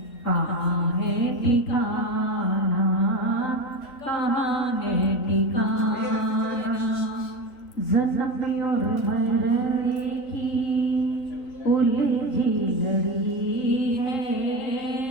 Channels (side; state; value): right; late; 3.4 ms